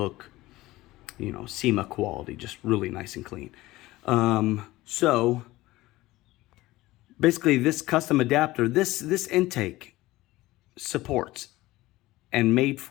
you know, SEMA quality, just really nice and clean. So basically this custom adapter, this intake supports and made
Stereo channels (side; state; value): right; quieter; 18.1 dB